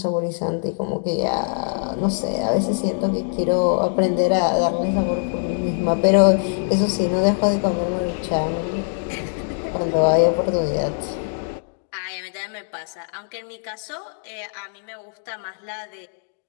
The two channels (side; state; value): right; silent; digital silence